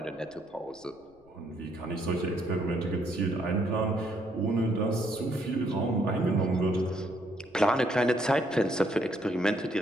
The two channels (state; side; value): noise; left; rumble, 29 dB below the sound